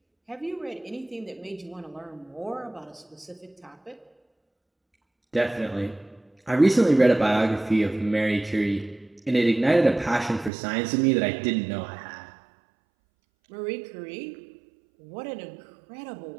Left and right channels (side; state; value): left; drops out; at 10.5 s